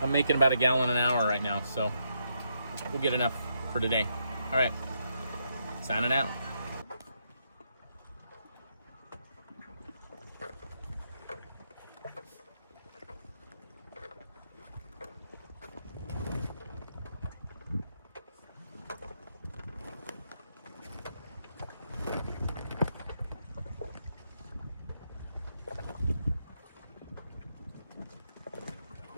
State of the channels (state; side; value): inverted; both; correlation -0.79